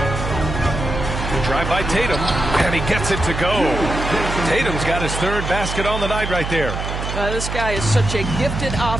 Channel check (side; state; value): right; noise; hum, 5 dB below the sound